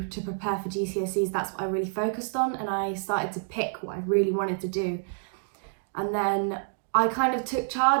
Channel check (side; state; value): left; silent; digital silence